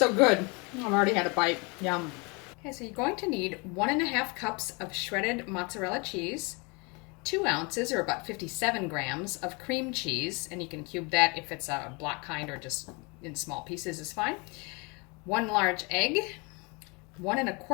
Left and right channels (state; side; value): quieter; right; 29.9 dB